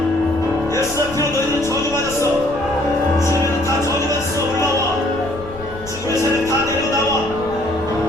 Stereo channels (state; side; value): noise; left; rumble, 15 dB below the sound